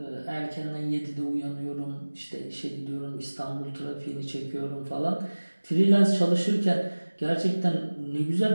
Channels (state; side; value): inverted; both; correlation -1.00